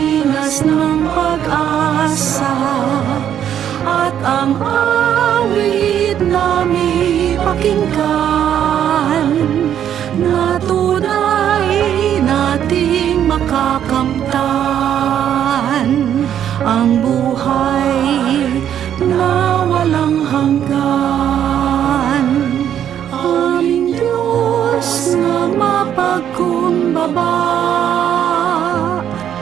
ng pag-asa at ang awit namin pakinggan na tunay nating makakamtan ang buhay na walang hanggan. Aming Diyos na mapagkumbaba,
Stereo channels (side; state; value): left; quieter; 9.9 dB